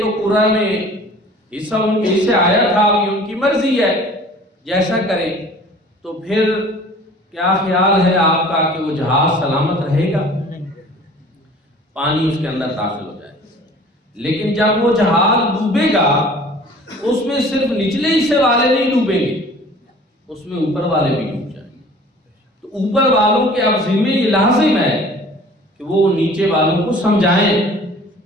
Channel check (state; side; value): normal; both; correlation 0.48